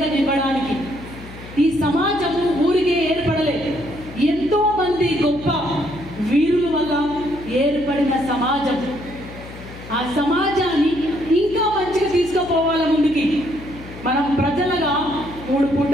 ఇవ్వడానికి. ఈ సమాజం ఊరికే ఏర్పడలేదు, ఎంతో మంది గొప్ప వీరుల వల్ల ఏర్పడిన సమాజం. ఆ సమాజాన్ని ఇంకా మంచిగా తీసుకుపోవాలి ముందుకి. మనం ప్రజలుగా 3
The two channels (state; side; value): noise; left; hum, 15 dB below the sound